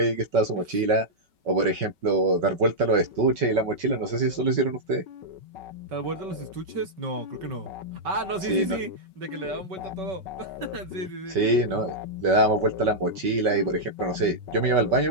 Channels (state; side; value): late; left; 5.3 ms